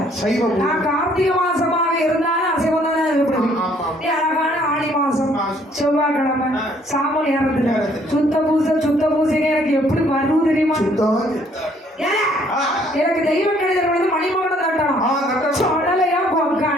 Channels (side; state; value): both; normal; correlation 0.63